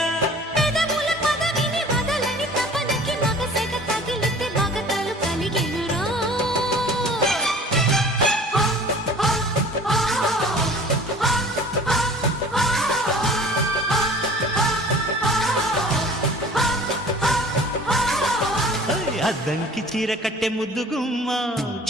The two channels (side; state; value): both; normal; correlation 0.46